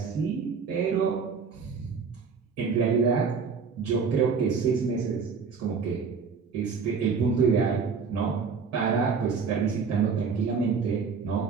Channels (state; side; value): quieter; left; 5.6 dB